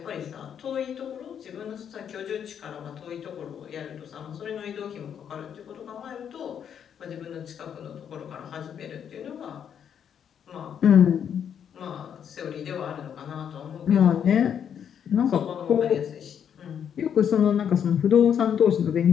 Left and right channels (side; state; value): right; quieter; 8.4 dB